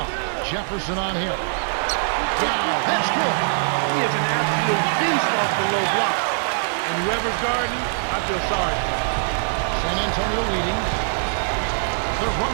Jefferson on him. Yao, that's good. He is an absolute beast off the low block. And whoever's guarding, I feel sorry for him. San Antonio leading. They're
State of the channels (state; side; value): silent; left; 57 dB below the other